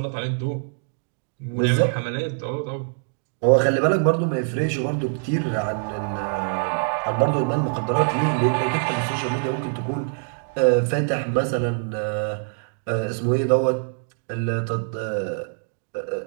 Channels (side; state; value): left; silent; digital silence